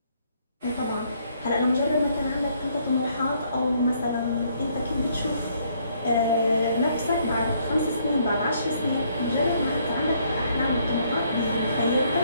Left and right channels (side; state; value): both; inverted; correlation -0.68